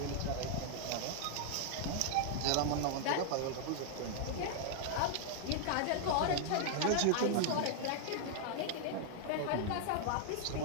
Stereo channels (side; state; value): both; different; correlation -0.01